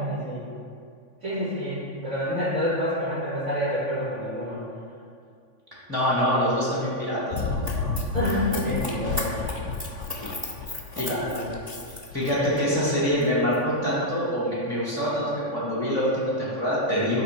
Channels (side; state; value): left; late; 3.5 ms